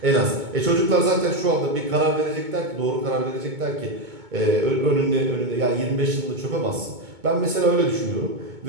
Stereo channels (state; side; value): late; left; 2.2 ms